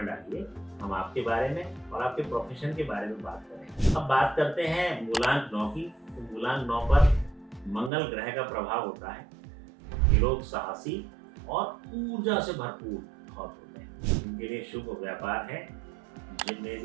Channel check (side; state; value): left; drops out; at 7.9 s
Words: डालिए। हम आपके बारे में और आपके प्रोफेशन के बारे में बात करें। अब बात करते हैं मूलांक 9 की। तो मूलांक 9 पर मंगल ग्रह का प्रभाव होता है। ये लोग साहसी और ऊर्जा से भरपूर बहुत होते हैं। इनके लिए शुभ व्यापार है